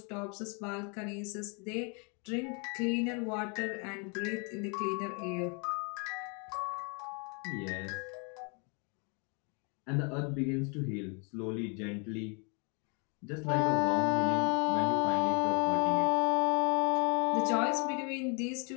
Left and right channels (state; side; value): quieter; right; 34.8 dB